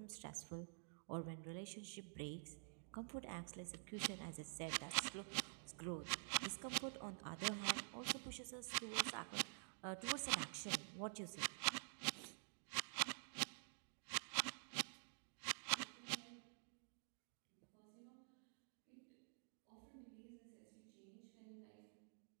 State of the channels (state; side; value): silent; left; digital silence